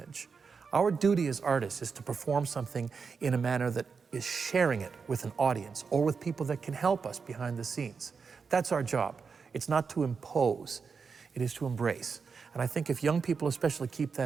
Our duty as artists is to perform something in a manner that is sharing it with an audience or with people that can help us behind the scenes. That's our job. It's not to impose, it is to embrace. And I think if young people especially keep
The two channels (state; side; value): quieter; left; 5.5 dB